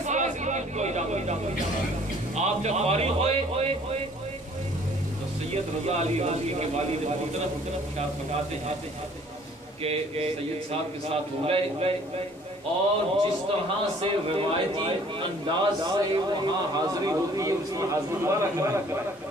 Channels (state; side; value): normal; both; correlation 0.56